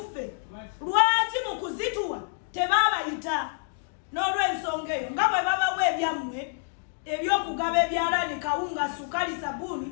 lwaki mu kuzituwa tebaabayita? N'olw'ensonga eyo nga bwe babawa ebyammwe ebyokugaba ebyalaani kawunga sukali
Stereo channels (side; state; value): right; silent; digital silence